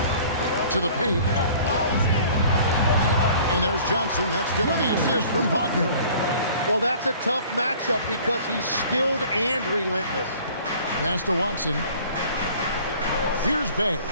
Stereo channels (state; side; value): inverted; both; correlation -0.50